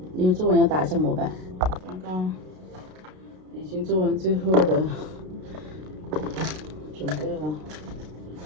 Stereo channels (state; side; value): late; left; 32 ms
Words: 因为作文要打一下模板。刚刚已经做完最后的准备了，